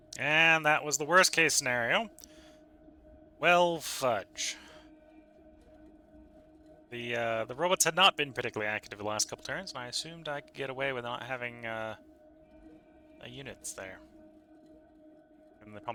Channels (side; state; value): both; identical; correlation 1.00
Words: And that was the worst case scenario. Well, fudge. The robots had not been particularly active the last couple turns, and I assumed I could get away with not having units there. And they